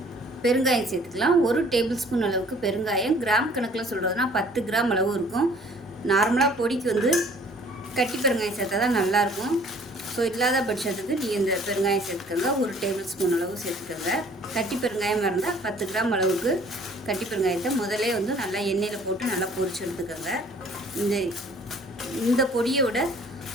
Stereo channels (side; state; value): both; normal; correlation 0.55